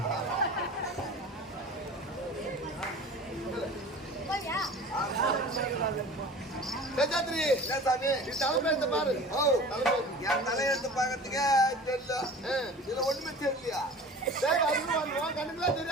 தலைமையெடுத்து பாரு. என் தலையெடுத்து பாக்கிறதுக்கே தெரியல. இதுல ஒண்ணுமே தெரியலையா? கண்ணுக்குலாம்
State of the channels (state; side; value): normal; both; correlation 0.40